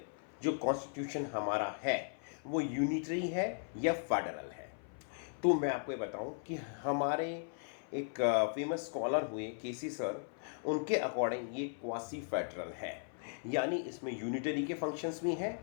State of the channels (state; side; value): silent; right; 53 dB below the other